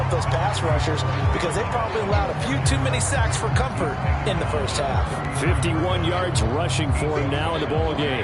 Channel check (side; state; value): both; identical; correlation 1.00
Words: up those pass rushers, because they probably allowed a few too many sacks for comfort in the first half. 51 yards rushing for him now in the ball